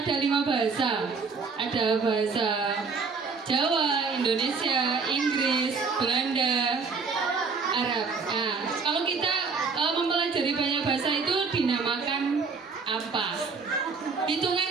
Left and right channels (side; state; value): left; quieter; 4.9 dB